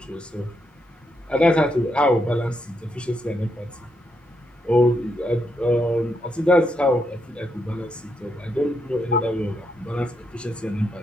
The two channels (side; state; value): both; normal; correlation 0.80